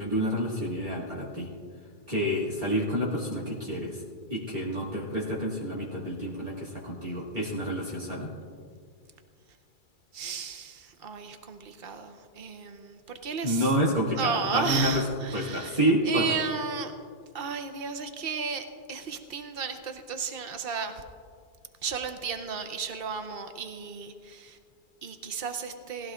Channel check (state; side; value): late; right; 2.3 ms